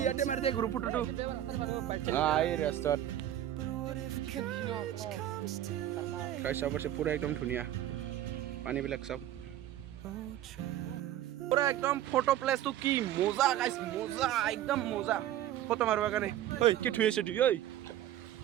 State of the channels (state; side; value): quieter; left; 12.3 dB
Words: ইয়াতে মাৰি দে গ্ৰুপ ফটোটো এই ৰাস্তাত চাব পাৰিছে পুৰা একদম ধুনীয়া পানীবিলাক চাওক পুৰা একদম ফটো প্লেচটো কি মজা গাইছ মজা একদম মজা ফটো মাৰিবৰ কাৰণে ঐ কি ধুই আছে তুই ঐ